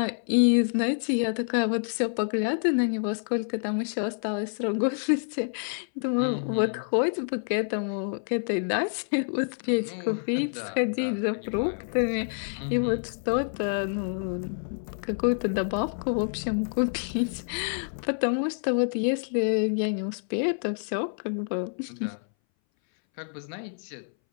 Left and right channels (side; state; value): right; silent; 60 dB below the other